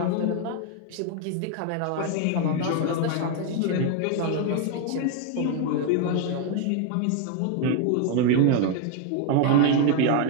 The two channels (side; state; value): both; different; correlation 0.01